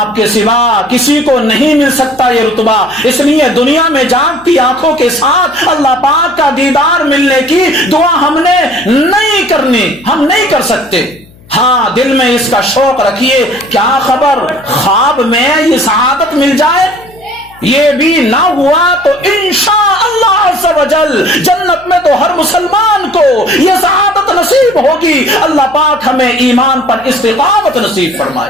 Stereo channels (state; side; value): noise; left; hum, 26 dB below the sound